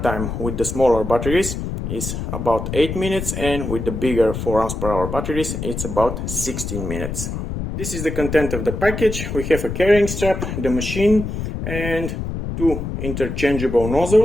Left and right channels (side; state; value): left; noise; rumble, 5 dB below the sound